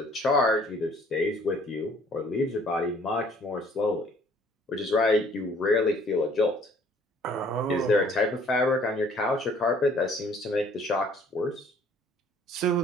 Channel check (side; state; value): both; normal; correlation 0.58